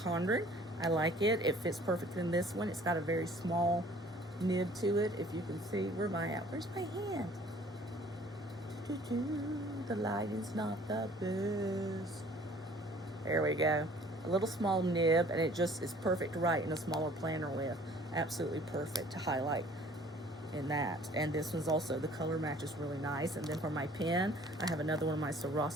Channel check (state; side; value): normal; both; correlation 0.53